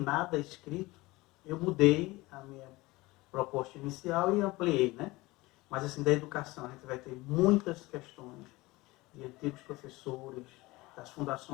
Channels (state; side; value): quieter; right; 21.0 dB